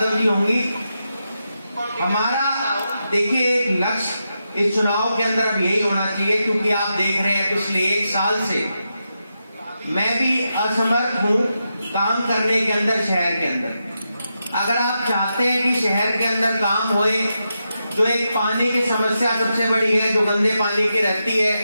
जी होंगी। हमारा देखिए एक लक्ष्य इस चुनाव के अंदर अब यही होना चाहिए, क्योंकि आप देख रहे हैं पिछले 1 साल से मैं भी असमर्थ हूँ काम करने के अंदर, शहर के अंदर। अगर आप चाहते हैं कि शहर के अंदर काम होए, जो एक पानी की समस्या सबसे बड़ी है जो गंदे पानी की रहती है,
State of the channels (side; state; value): both; inverted; correlation -0.87